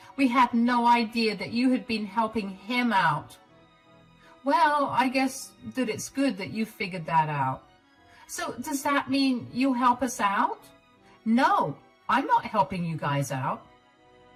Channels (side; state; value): both; identical; correlation 1.00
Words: We had no idea that you had been helping him out." "Well, I guess that it's good that you figured that out." "So does that mean you'll help us out?" "No, I'm not helping you guys out."